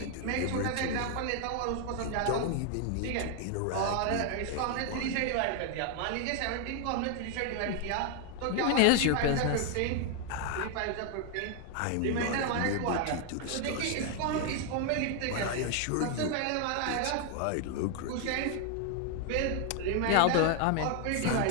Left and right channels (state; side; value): different; both; correlation 0.00